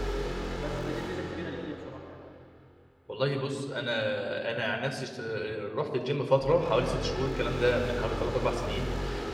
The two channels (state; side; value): identical; both; correlation 1.00